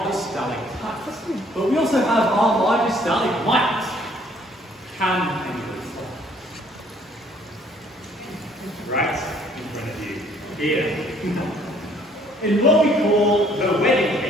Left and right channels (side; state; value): both; normal; correlation 0.61